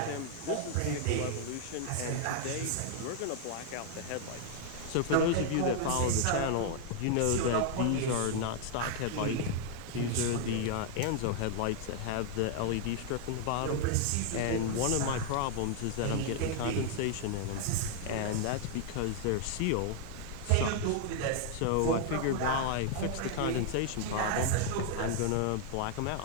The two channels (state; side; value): different; both; correlation 0.00